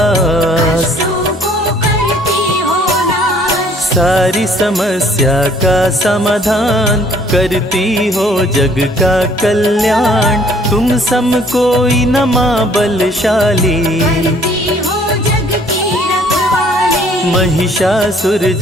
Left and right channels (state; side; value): normal; both; correlation 0.59